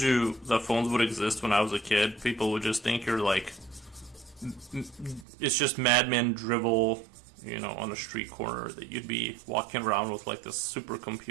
the phones would exist when I was a kid, people would just think you're like it's just madman drivel, on a street corner that you'd be walking around with like this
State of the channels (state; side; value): drops out; left; at 5.2 s